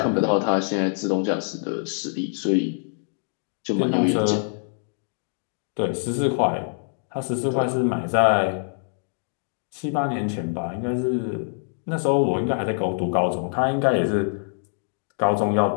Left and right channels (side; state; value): right; silent; digital silence